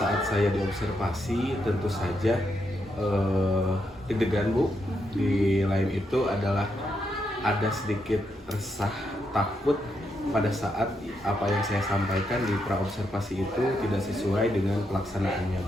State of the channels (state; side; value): normal; both; correlation 0.81